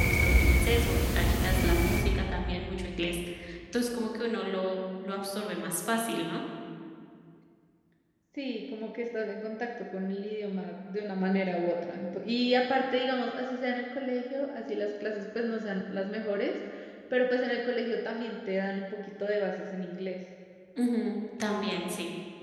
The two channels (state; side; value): identical; both; correlation 1.00